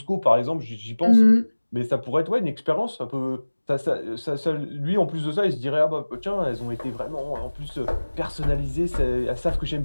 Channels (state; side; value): inverted; both; correlation -1.00